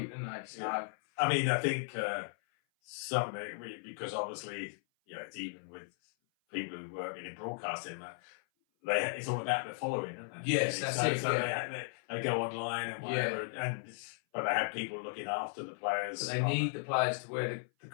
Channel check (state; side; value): silent; right; 54 dB below the other